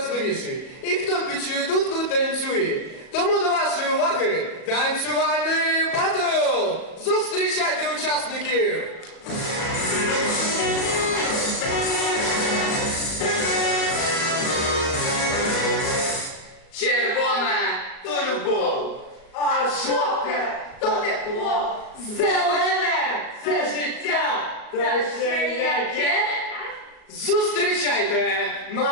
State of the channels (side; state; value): right; late; 37 ms